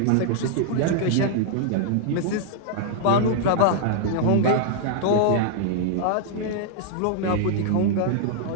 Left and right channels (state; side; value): different; both; correlation -0.01